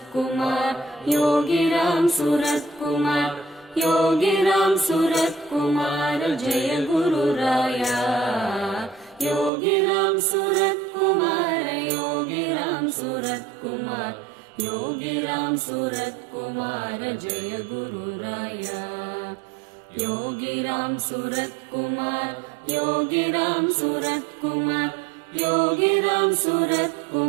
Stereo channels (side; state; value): left; drops out; at 9.5 s